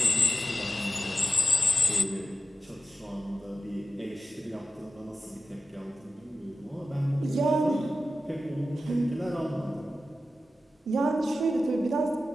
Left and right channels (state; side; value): normal; both; correlation 0.93